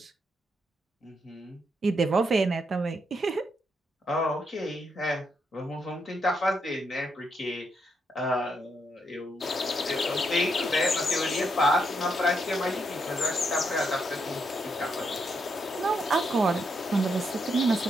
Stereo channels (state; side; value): normal; both; correlation 0.79